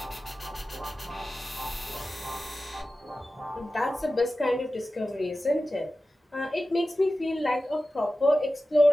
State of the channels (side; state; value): both; normal; correlation 0.94